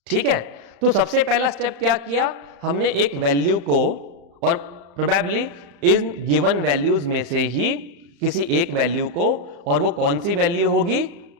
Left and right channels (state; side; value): late; left; 35 ms